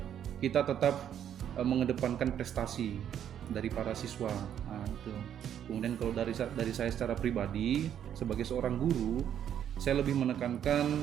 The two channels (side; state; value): left; quieter; 9.7 dB